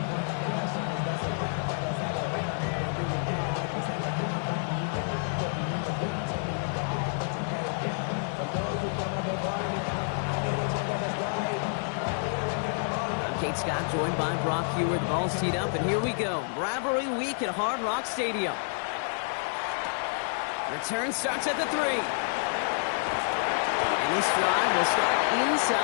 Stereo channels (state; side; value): silent; right; digital silence